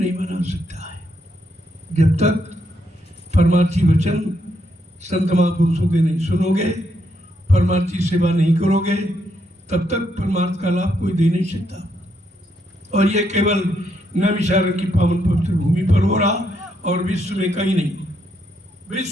बना सकता है। जब तक परमार्थी वचन संत महापुरुषों के नहीं सुनोगे, परमार्थी सेवा नहीं करोगे, तब तक परमार्थ का लाभ कोई दे नहीं सकता। और ये केवल नैमिषारण्य की पावन पवित्र भूमि पर हो रहा, और विश्व में कहीं नहीं,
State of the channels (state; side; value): normal; both; correlation 0.77